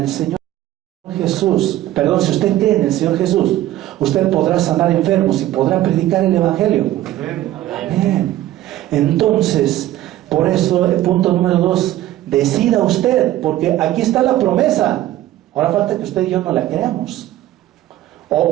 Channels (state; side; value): quieter; left; 14.3 dB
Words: Señor Jesús, si usted cree en el Señor Jesús, usted podrá sanar enfermos y podrá predicar el Evangelio. Amén. Entonces, por eso, el punto número 2, decida usted, porque aquí está la promesa. Ahora falta que usted y yo no la creamos.